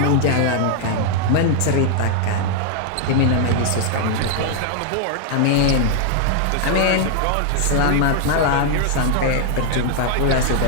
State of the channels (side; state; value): both; different; correlation 0.00